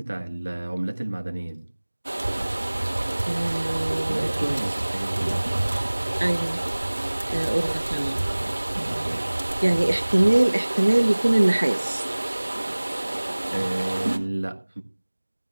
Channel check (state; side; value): inverted; both; correlation -1.00